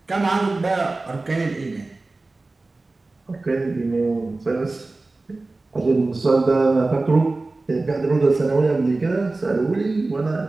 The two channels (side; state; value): left; quieter; 3.3 dB